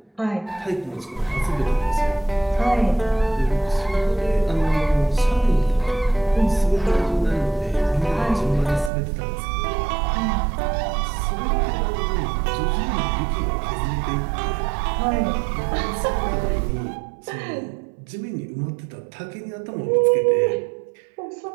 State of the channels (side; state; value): left; drops out; at 8.9 s